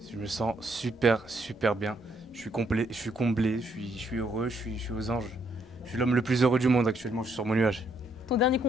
Je me sens super bien. Je suis complet, je suis comblé, je suis heureux, je suis aux anges. Je suis l'homme le plus heureux du monde actuellement, je suis sur mon nuage. Ton dernier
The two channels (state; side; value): normal; both; correlation 0.72